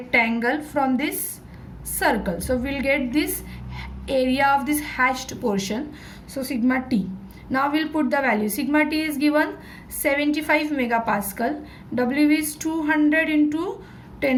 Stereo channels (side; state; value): both; identical; correlation 1.00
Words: from this circle. So we will get this area of this hashed portion. So sigma T. Now we'll put the value. Sigma T is given 75 megapascal. W is 200 into